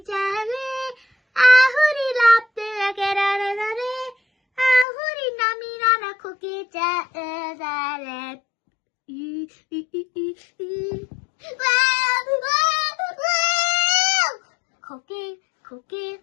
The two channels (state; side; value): drops out; right; at 4.9 s